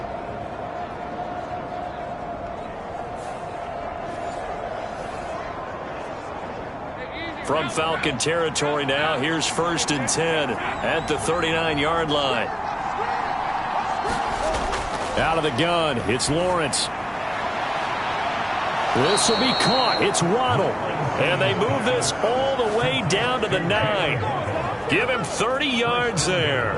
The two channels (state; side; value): identical; both; correlation 1.00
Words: From Falcon territory now, here's 1st and 10 at the 39-yard line. Out of the gun, it's Lawrence. This will be caught. It's Waddle. And they move this all the way down to the 9. Give him 30 yards there.